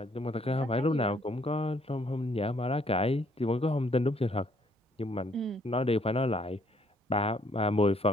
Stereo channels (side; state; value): both; normal; correlation 0.67